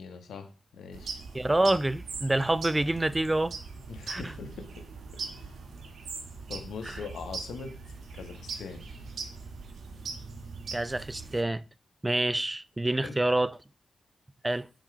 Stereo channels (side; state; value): both; normal; correlation 0.97